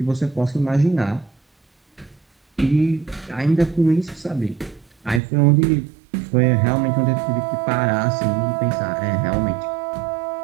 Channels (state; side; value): drops out; left; at 5.2 s